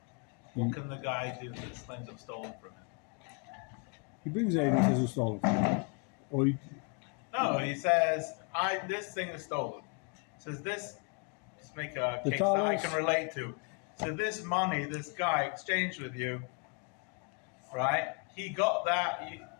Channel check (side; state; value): right; quieter; 37.6 dB